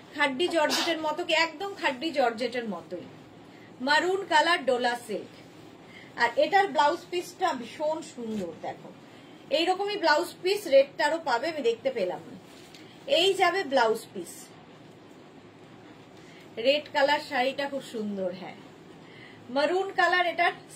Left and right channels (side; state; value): both; identical; correlation 1.00